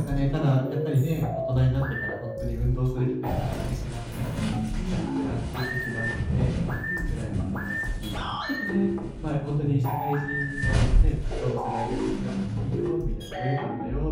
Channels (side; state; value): both; identical; correlation 1.00